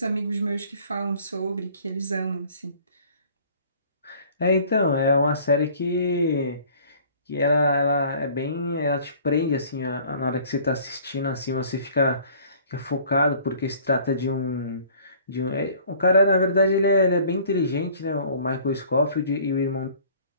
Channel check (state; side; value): inverted; both; correlation -0.52